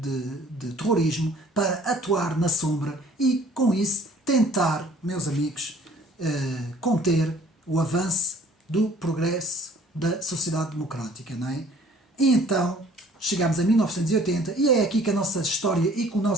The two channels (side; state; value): both; normal; correlation 0.54